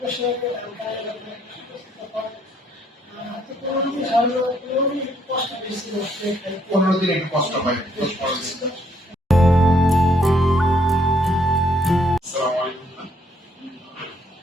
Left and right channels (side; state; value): both; normal; correlation 0.69